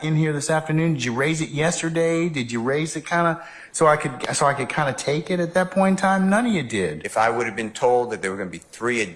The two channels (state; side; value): identical; both; correlation 1.00